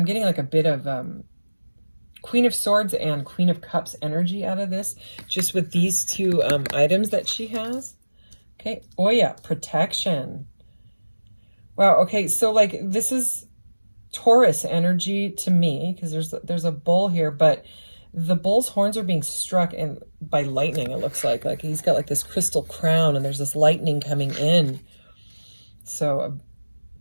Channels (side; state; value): both; inverted; correlation -1.00